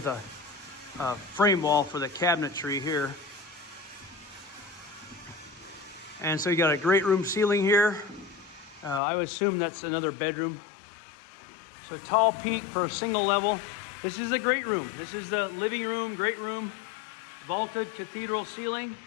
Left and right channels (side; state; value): right; drops out; at 9.0 s